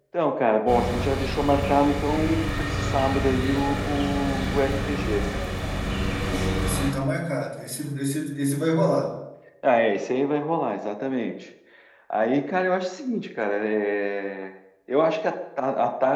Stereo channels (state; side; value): identical; both; correlation 1.00